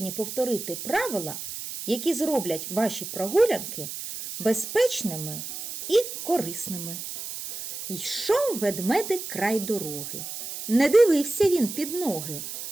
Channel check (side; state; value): right; noise; hiss, 8 dB below the sound